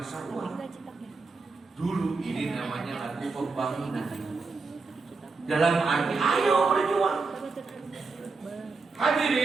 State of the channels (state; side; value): quieter; left; 4.2 dB